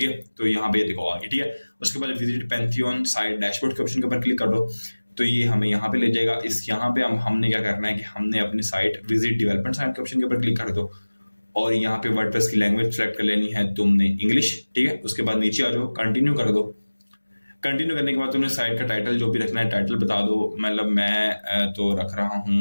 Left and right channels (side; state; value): both; inverted; correlation -1.00